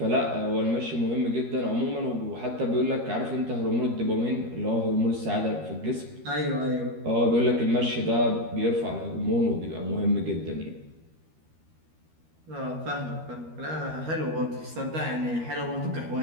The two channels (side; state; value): left; late; 13 ms